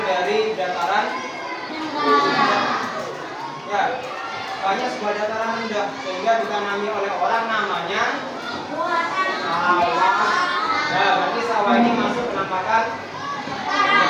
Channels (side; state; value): both; identical; correlation 1.00